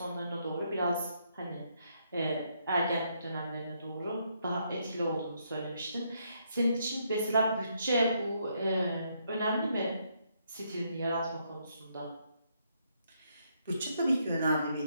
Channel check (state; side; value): inverted; both; correlation -0.74